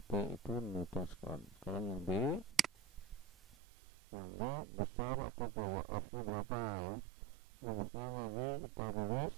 P itu Newton sekon. Sekarang yang B, besar atau gaya F nya berapa ya. Rumusnya tadi kita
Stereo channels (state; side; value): drops out; left; at 3.6 s